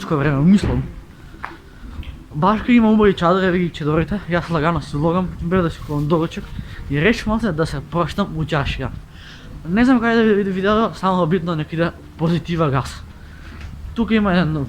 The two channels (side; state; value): both; identical; correlation 1.00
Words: време, мислам. Башка има убави чадори, еве ги чадорите, јас лагано си влогам, бев да си купам доручек и решив малце да се проштам у чаршија. Не знам кај да види видео, само битно нека иде позитива газ. Тука има еден